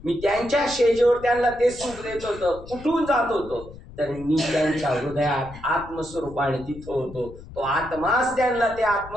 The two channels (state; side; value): noise; left; rumble, 17 dB below the sound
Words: मी त्यांच्या शेजेवर त्यांना ते सुख देत होतो. कुठून जात होतो? तर मी त्यांच्या हृदयात आत्मस्वरूपाने तिथं होतो. तो आत्माच त्यांना ते